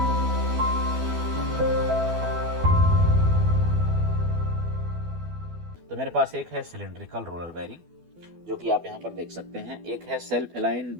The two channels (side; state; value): left; late; 12 ms